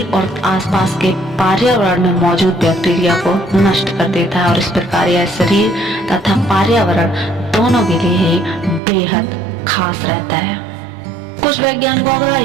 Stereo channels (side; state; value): left; drops out; at 8.8 s